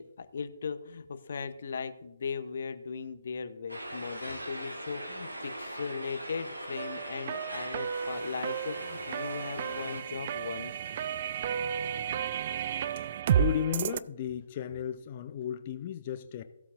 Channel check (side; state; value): both; inverted; correlation -0.61